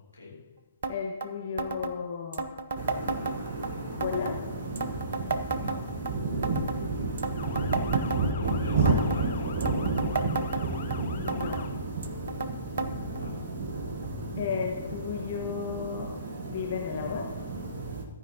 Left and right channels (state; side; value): inverted; both; correlation -0.48